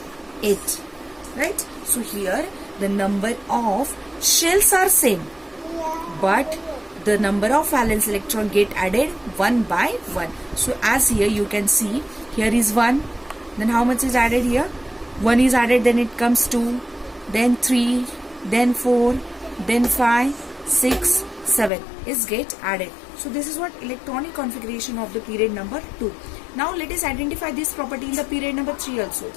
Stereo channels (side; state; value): right; drops out; at 21.7 s